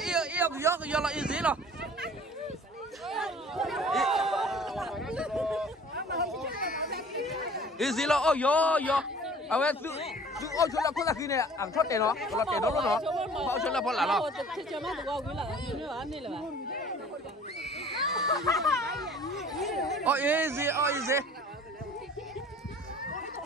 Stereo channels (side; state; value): both; normal; correlation 0.48